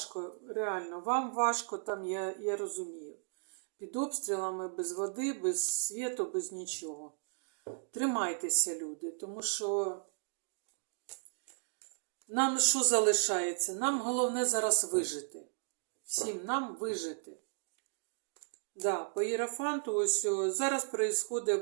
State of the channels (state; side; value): silent; left; digital silence